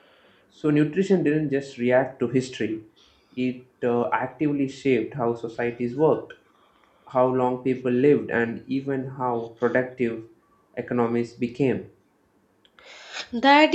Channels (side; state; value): both; identical; correlation 1.00